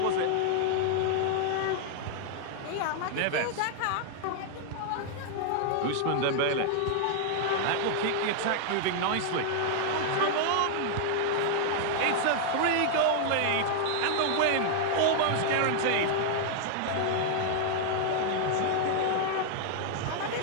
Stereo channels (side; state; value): both; different; correlation 0.00